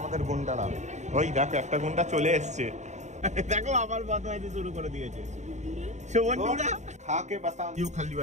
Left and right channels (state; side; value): late; left; 0.34 ms